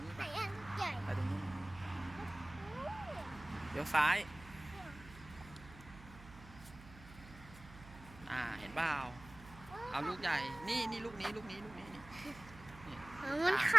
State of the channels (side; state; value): right; noise; hum, 17 dB below the sound